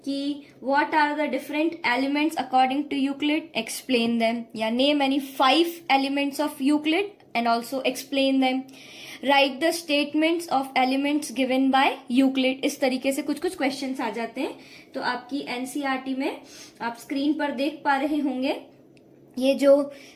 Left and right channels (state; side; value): identical; both; correlation 1.00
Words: कि what are the different elements according to Euclid, explain them, या name any 5 elements of Euclid and also explain them, write the statements of elements given by Euclid। इस तरीके से कुछ कुछ क्वेश्चंस आ जाते हैं। तो आपकी NCERT में आप स्क्रीन पर देख पा रहे होंगे, ये जो